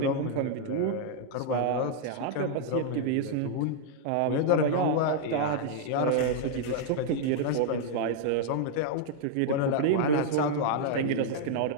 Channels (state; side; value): different; both; correlation -0.01